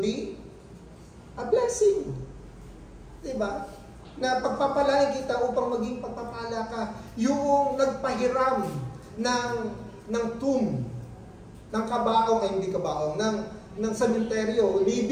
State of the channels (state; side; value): identical; both; correlation 1.00